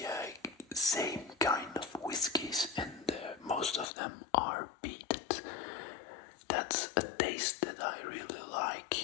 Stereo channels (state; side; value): drops out; right; at 3.9 s